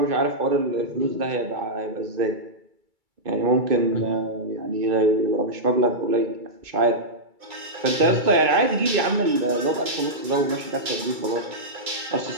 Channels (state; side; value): late; left; 2.3 ms